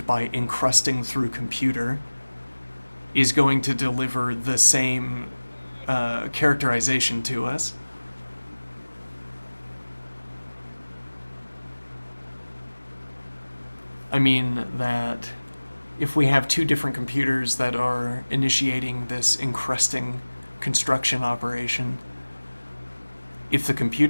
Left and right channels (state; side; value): inverted; both; correlation -1.00